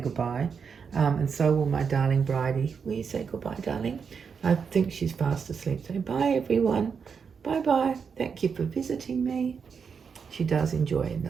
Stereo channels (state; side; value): quieter; left; 6.2 dB